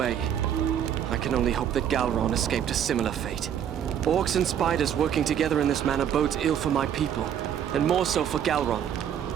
I can only hope that Galron escaped a similar fate. Orcs and spiders working together in this manner bodes ill for my people, and more so for Galron.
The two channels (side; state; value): left; quieter; 9.4 dB